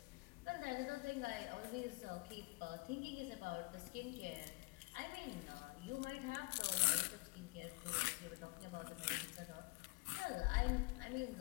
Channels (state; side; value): quieter; right; 27.0 dB